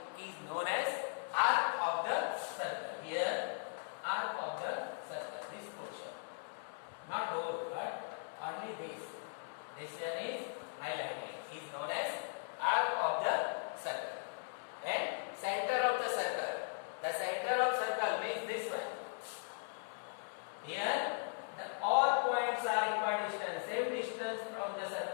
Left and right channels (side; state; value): right; silent; digital silence